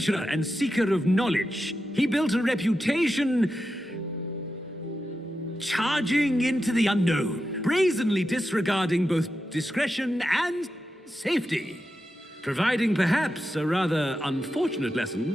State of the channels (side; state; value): both; normal; correlation 0.89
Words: and seeker of knowledge, he built a reputation charging into the unknown, brazenly disregarding both discretion and safety, providing perhaps a rather unfortunate